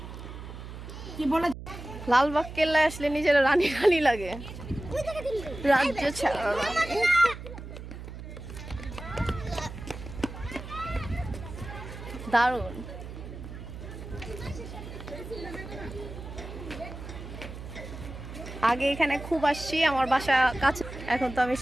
কি বলে লালবাগ কেল্লায় আসলে নিজের রানী রানী লাগে, রাজ্য ছাড়া। দারুণ। আগে এখানে খুব আসছি, আমার বাসা কাছে। এখন তো আমি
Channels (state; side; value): noise; right; hum, 11 dB below the sound